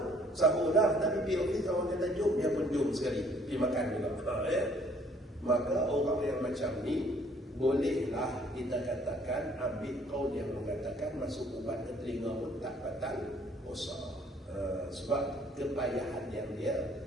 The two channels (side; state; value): both; normal; correlation 0.60